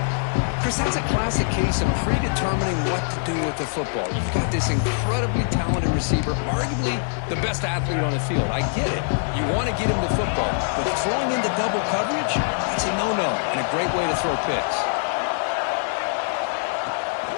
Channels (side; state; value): right; silent; 63 dB below the other